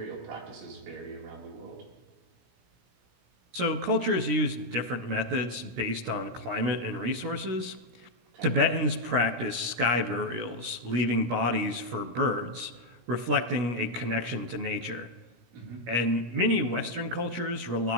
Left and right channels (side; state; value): left; late; 17 ms